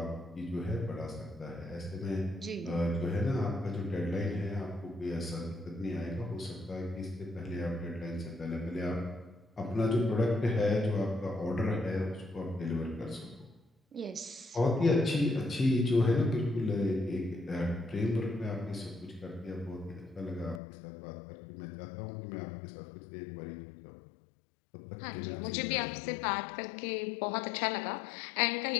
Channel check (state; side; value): drops out; right; at 20.6 s